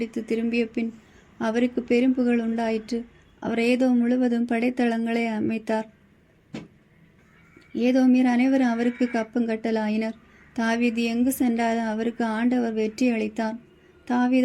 திரும்பிய பின் அவருக்கு பெரும் புகழ் உண்டாயிற்று. அவர் ஏதோம் முழுவதும் படைத்தளங்களை அமைத்தார். ஏதோமியர் அனைவரும் அவருக்கு கப்பங்கட்டலாயினர். தாவீது எங்கு சென்றாலும் அவருக்கு ஆண்டவர் வெற்றி அளித்தார்.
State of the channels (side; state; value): both; identical; correlation 1.00